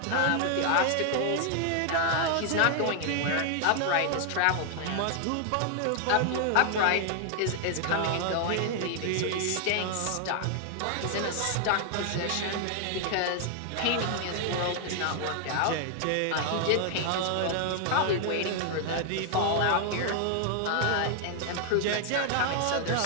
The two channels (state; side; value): different; both; correlation 0.00